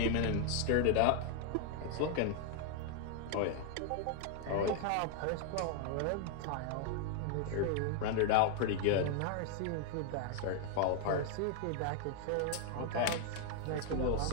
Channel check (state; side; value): different; both; correlation 0.00